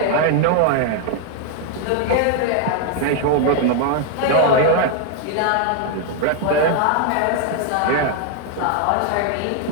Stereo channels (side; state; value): both; different; correlation 0.00